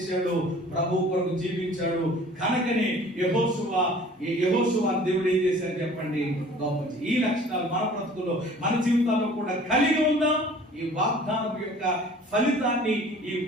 ప్రభు కొరకు జీవించాడు. కనుకనే యెహోషువ దేవుడు ఏం చేశాడు చెప్పండి? గొప్ప. ఈ లక్షణాలు మన బ్రతుకులో, మన జీవితాల్లో కూడా కలిగి ఉందాం. ఈ వాగ్దానం యొక్క ఫలితాన్ని, ఈ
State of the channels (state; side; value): normal; both; correlation 0.49